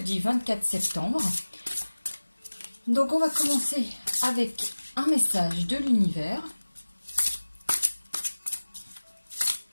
24 septembre. Donc on va commencer avec un message de l'univers.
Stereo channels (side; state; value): both; inverted; correlation -1.00